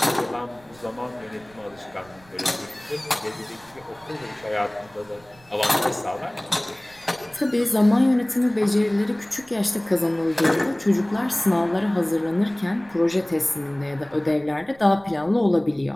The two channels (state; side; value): noise; right; rumble, 27 dB below the sound